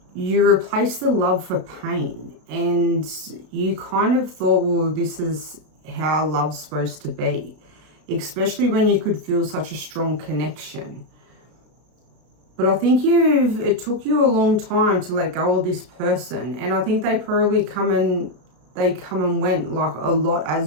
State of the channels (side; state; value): left; late; 33 ms